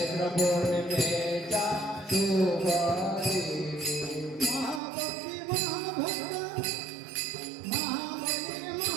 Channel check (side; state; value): left; drops out; at 4.8 s